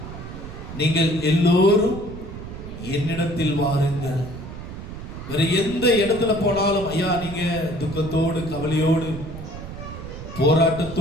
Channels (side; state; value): right; noise; rumble, 11 dB below the sound